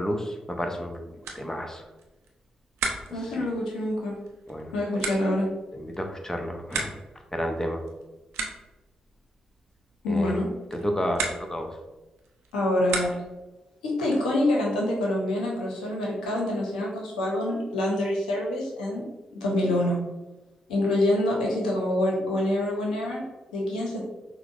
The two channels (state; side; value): normal; both; correlation 0.77